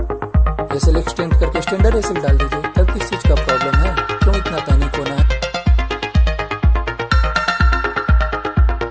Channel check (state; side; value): identical; both; correlation 1.00